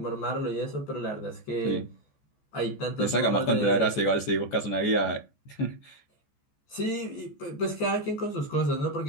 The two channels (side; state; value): right; late; 14 ms